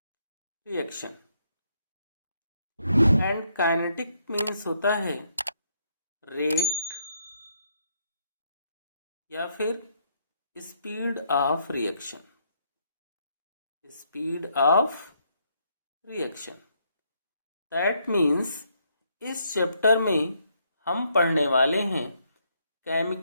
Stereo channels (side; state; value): both; inverted; correlation -0.73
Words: reaction and kinetic means होता है रेट या फिर speed of reaction. Speed of reaction that means इस चैप्टर में हम पढ़ने वाले हैं